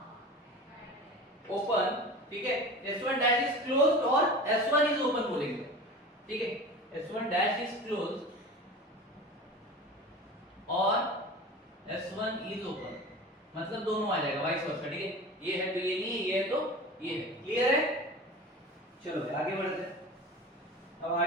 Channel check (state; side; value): normal; both; correlation 0.35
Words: open, ठीक है। S1 dash is closed और S1 is open बोलेंगे, ठीक है। S1 dash is closed और S1 is open, मतलब दोनों आ जाएगा, वाइस वर्सा, ठीक है। ये है तो ये नहीं है, ये है तो ये है। क्लियर है? चलो आगे बढ़ते हैं। अब